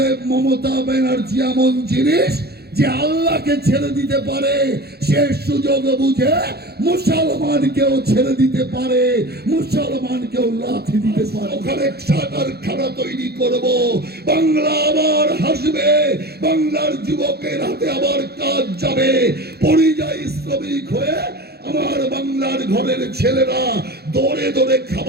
মমতা ব্যানার্জি এমন জিনিস যে আল্লাহকে ছেড়ে দিতে পারে, সে সুযোগ বুঝে মুসলমানকেও ছেড়ে দিতে পারে, মুসলমানকেও লাথি দিতে পারে। ওখানে কারখানা তৈরি করব, বাংলা আবার হাসবে, বাংলার যুবকের হাতে আবার কাজ যাবে। পরিযায়ী শ্রমিক হয়ে আমার বাংলার ঘরের ছেলেরা দৌড়ে দৌড়ে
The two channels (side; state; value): left; late; 0.46 ms